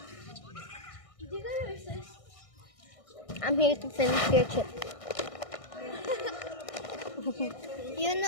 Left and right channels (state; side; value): late; right; 1.6 ms